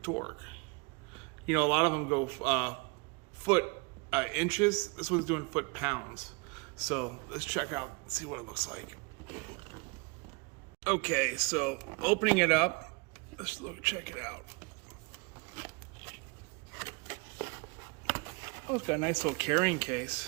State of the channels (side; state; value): left; quieter; 30.3 dB